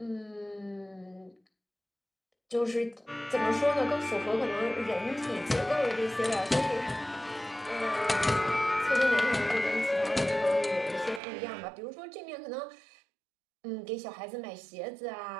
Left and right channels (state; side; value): drops out; left; at 11.2 s